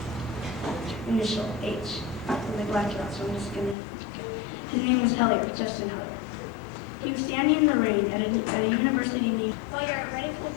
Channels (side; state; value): right; drops out; at 3.8 s